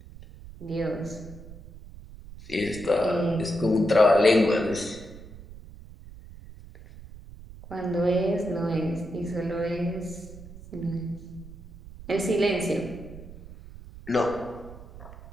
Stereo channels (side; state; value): right; noise; rumble, 16 dB below the sound